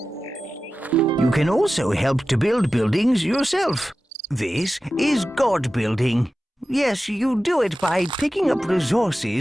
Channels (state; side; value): normal; both; correlation 0.94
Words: You can also help to build buildings yourself. This is God building. Yes, you do it by picking up